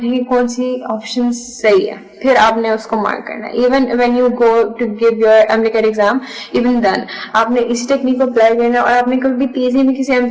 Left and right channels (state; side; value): identical; both; correlation 1.00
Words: ہے کہ کون سی آپشن صحیح ہے, پھر آپ نے اس کو مارک کرنا ہے. Even when you go to give your MD exam, even then آپ نے اسی ٹیکنیک کو اپلائی کرنا ہے, اور آپ نے کبھی بھی تیزی میں کسی ایم